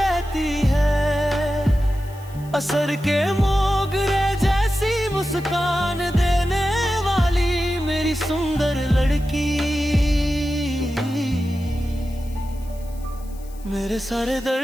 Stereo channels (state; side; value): noise; left; hiss, 24 dB below the sound